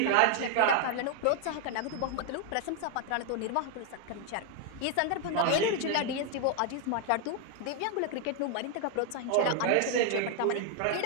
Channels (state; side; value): different; both; correlation 0.00